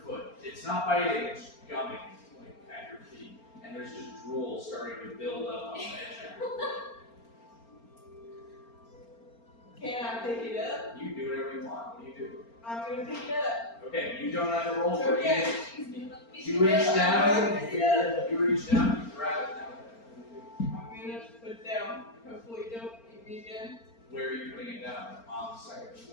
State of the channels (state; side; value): late; right; 4.4 ms